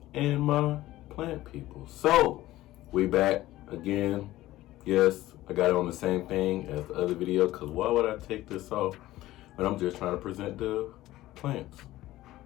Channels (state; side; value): quieter; right; 16.1 dB